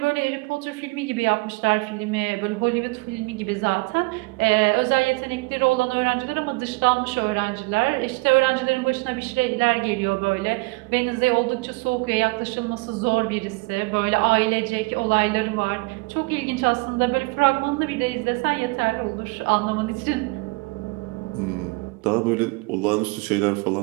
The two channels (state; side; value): quieter; left; 26.6 dB